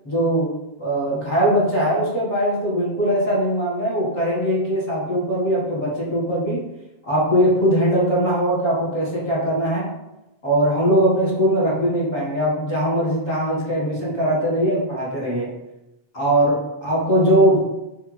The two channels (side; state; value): right; late; 7.2 ms